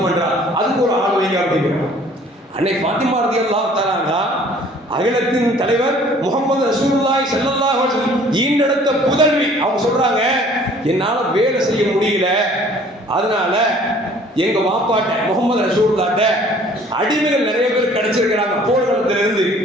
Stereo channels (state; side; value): normal; both; correlation 0.54